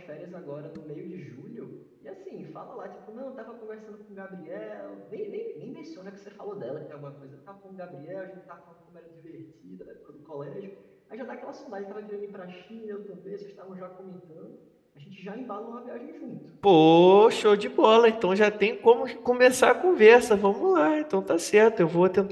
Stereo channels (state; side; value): identical; both; correlation 1.00